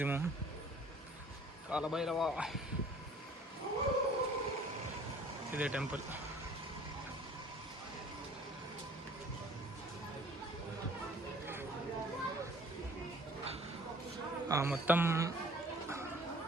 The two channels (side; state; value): both; normal; correlation 0.52